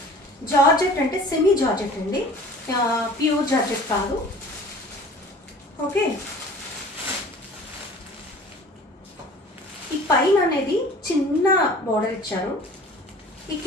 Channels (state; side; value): normal; both; correlation 0.45